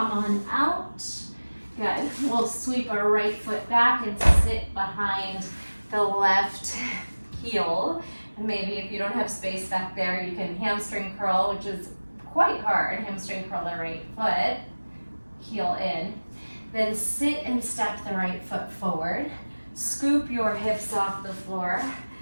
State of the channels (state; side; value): inverted; both; correlation -1.00